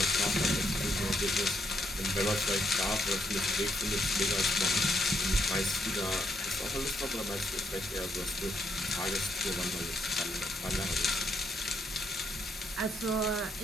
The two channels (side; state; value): both; normal; correlation 0.74